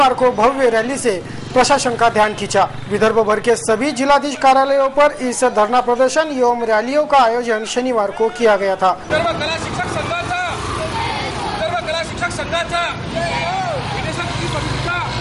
को भव्य रैली से प्रशासन का ध्यान खींचा। विदर्भ भर के सभी जिलाधीश कार्यालयों पर इस धरना प्रदर्शन एवं रैलियों का आयोजन शनिवार को किया गया था।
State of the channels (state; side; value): identical; both; correlation 1.00